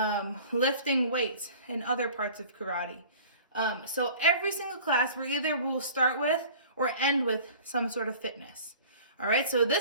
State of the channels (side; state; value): both; inverted; correlation -0.45